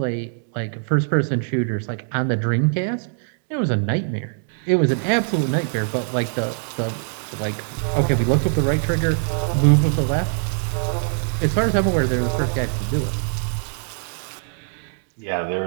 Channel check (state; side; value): silent; left; digital silence